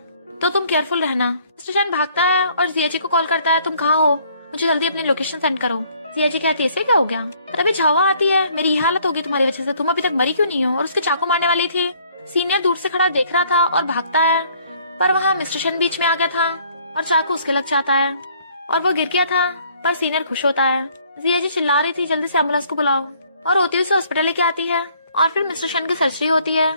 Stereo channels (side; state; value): both; inverted; correlation -0.61